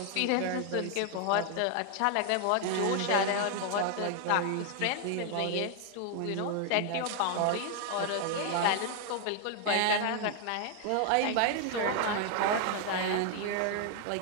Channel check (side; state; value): both; different; correlation 0.00